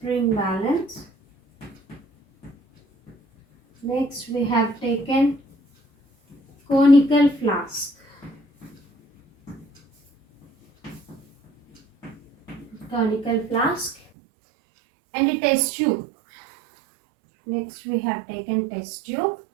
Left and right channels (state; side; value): drops out; left; at 14.0 s